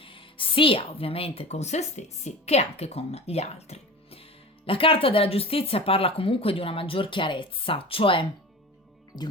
sia ovviamente con se stessi che anche con gli altri. La carta della giustizia parla comunque di una maggior chiarezza, cioè di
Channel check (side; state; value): both; normal; correlation 0.34